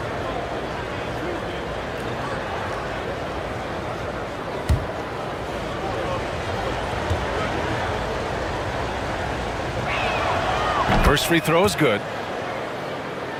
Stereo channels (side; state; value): both; identical; correlation 1.00